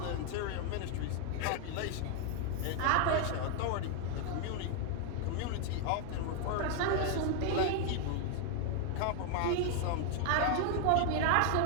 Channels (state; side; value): different; both; correlation 0.00